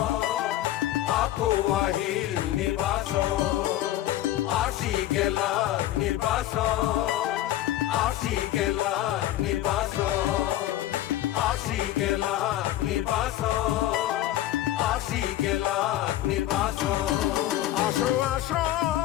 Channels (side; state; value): right; quieter; 13.8 dB